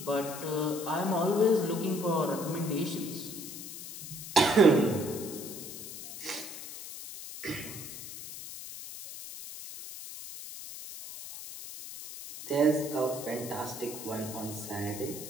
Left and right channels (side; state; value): left; noise; hiss, 11 dB below the sound